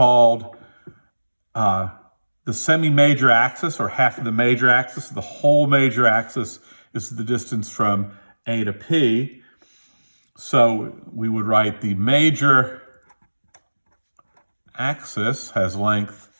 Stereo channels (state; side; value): inverted; both; correlation -1.00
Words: the semi-major axis, or half of the major axis. The whole major axis is the distance from A to P. So we would write the major axis has length